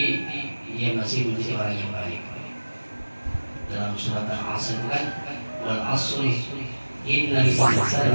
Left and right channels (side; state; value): both; inverted; correlation -1.00